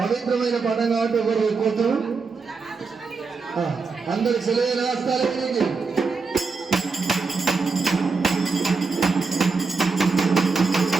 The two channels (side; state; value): left; quieter; 4.5 dB